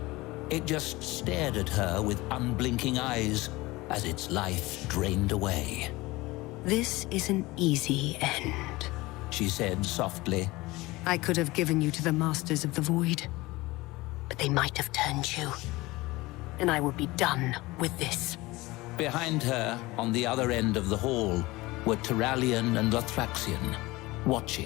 It just stared at her with unblinking eyes as its life drained away. This is an easy end, She said softly. I could have given you to the Masters of the Void, but they might have turned you, and I would be done with this. Behind her, on the other end of the hall, were Turallion and Lothraxion,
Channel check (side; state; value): right; quieter; 20.8 dB